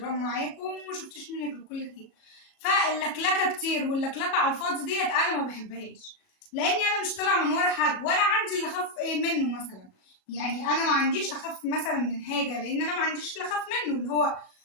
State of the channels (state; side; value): late; right; 37 ms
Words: معاكم وما شفتش منك الكل خير. فاللكلكة كتير واللكلكة على الفاضي ديت انا ما بحبهاش، لاني انا مش طالعة من ورا حد ولا عندي اللي اخاف منه مثلا. يعني انا ما عنديش اخاف مثلا من حاجة، لان انا ما عنديش اللي اخاف منه، اللي هو